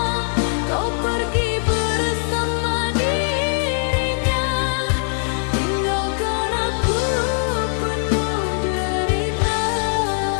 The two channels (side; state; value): right; silent; digital silence